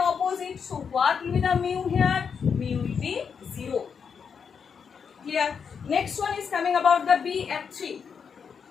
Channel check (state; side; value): quieter; right; 6.5 dB